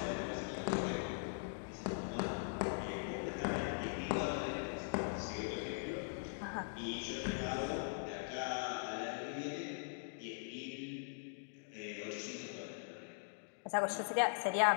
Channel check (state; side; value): silent; right; digital silence